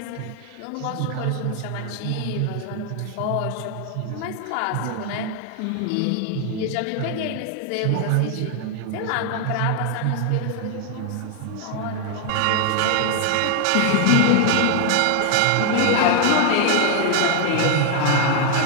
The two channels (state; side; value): different; both; correlation 0.00